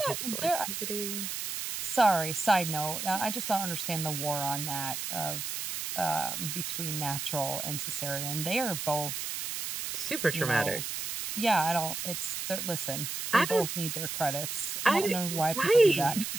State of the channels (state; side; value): noise; right; hiss, 4 dB below the sound